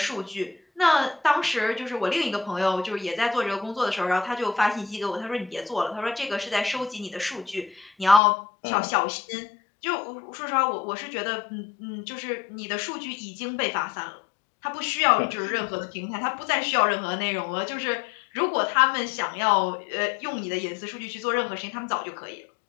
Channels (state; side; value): drops out; right; at 8.2 s